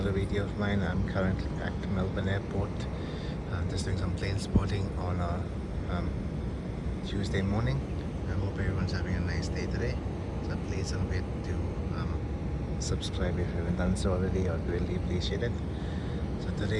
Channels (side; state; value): both; identical; correlation 1.00